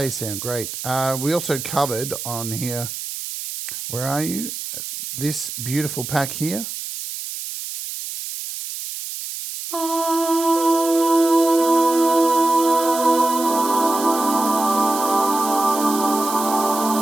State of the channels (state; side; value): noise; right; hiss, 8 dB below the sound